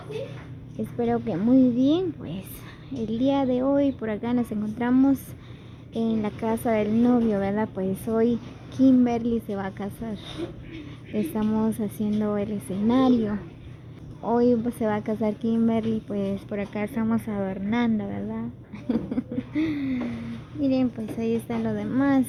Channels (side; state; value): both; identical; correlation 1.00